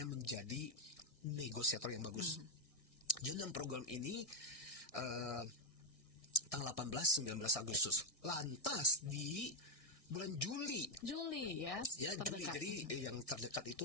menjadi negosiator yang bagus. Jadi dalam program ini tanggal 18-19 Agustus. Lantas di bulan Juli ya, Juli. Jadi yang terdekat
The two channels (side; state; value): right; late; 1.6 ms